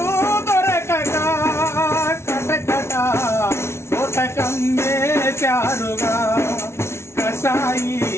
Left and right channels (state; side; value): late; right; 0.13 ms